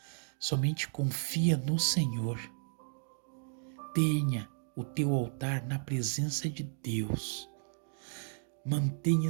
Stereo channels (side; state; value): left; silent; digital silence